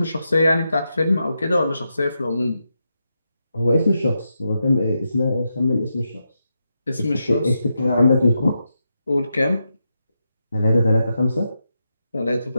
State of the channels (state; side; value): inverted; both; correlation -0.86